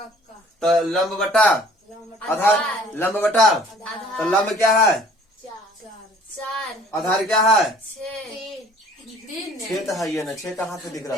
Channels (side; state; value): both; normal; correlation 0.53